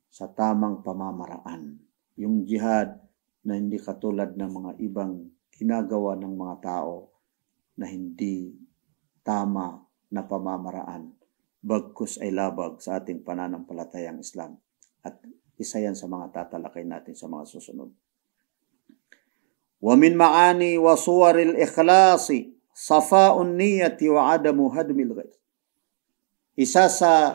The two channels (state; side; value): silent; left; digital silence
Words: sa tamang pamamaraan, yung jihad na hindi katulad ng mga ibang ginagawa ng mga tao na hindi tama na pamamaraan, bagkus ay labag sa ating pananampalatayang Islam. At isa yan sa mga tatalakay natin sa mga susunod. Wa min ma'ani wa suwaril ikhlasi safa'un niyati wa adamu hadmil ghayr. Isa